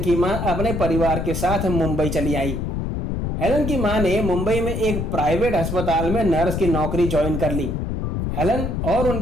मां अपने परिवार के साथ मुंबई चली आई। हेलन की मां ने मुंबई में एक प्राइवेट अस्पताल में नर्स की नौकरी ज्वाइन कर ली। हेलन और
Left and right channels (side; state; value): left; noise; rumble, 2 dB below the sound